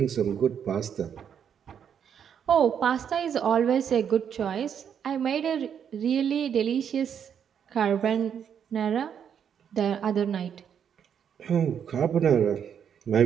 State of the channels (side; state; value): left; quieter; 8.2 dB